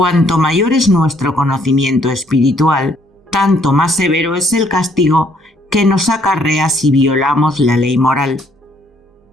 mayor es nuestro conocimiento espiritual, tanto más severo es el castigo que nos acarrea si violamos la ley moral.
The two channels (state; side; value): normal; both; correlation 0.66